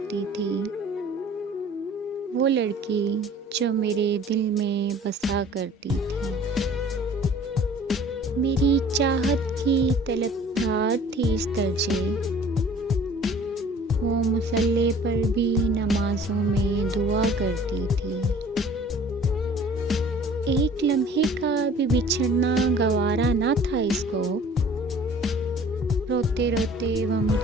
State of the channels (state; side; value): normal; both; correlation 0.49